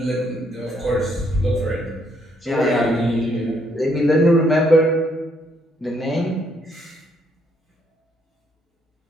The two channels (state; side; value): normal; both; correlation 0.71